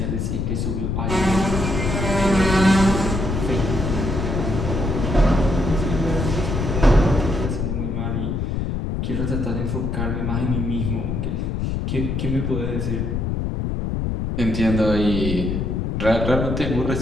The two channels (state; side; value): noise; left; rumble, 1 dB below the sound